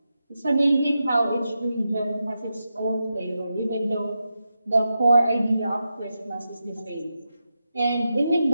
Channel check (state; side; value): inverted; both; correlation -0.88